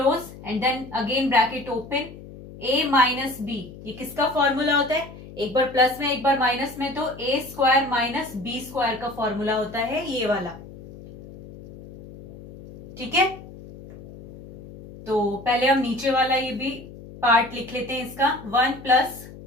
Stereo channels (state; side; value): noise; left; hum, 16 dB below the sound